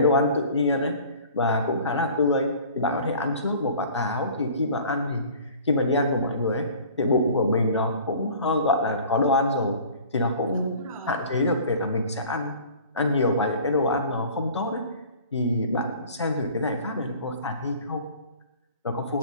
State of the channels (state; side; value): inverted; both; correlation -0.46